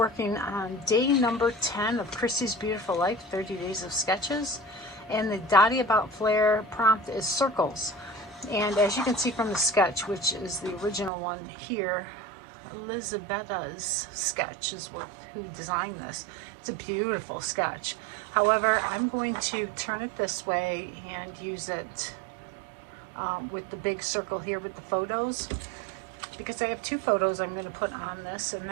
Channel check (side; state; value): left; drops out; at 11.1 s